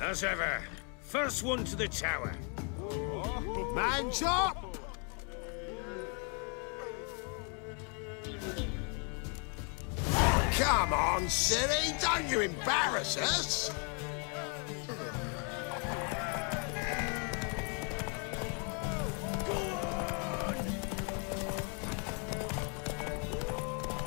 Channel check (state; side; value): quieter; right; 38.2 dB